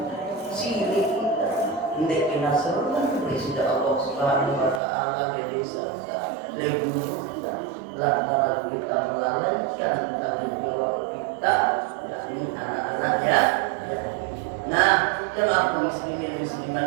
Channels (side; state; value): left; drops out; at 4.8 s